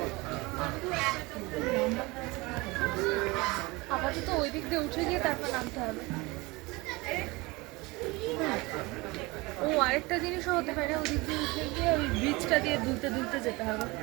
আপাতত ওই দিক দিয়ে উঠে গিয়ে তারপর নামতে হবে। ও আরেকটা জিনিসও হতে পারে, ওই দিক দিয়ে উঠে গিয়ে ওই ব্রিজটা দিয়ে দুলতে দুলতে যেতে হবে।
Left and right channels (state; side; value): quieter; left; 23.6 dB